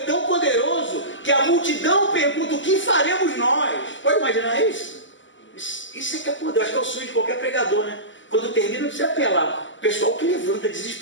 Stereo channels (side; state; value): right; late; 0.55 ms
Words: poderoso que a multidão pergunta, o que faremos nós? Pode imaginar isso? Isso é que é poder, acho que é o sonho de qualquer pregador, né? Quando termina, não precisa apelar. O pessoal que levanta